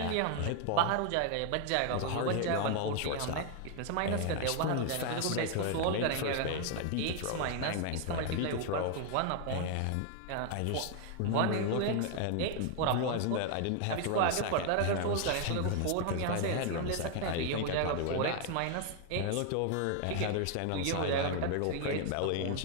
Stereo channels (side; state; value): both; different; correlation 0.00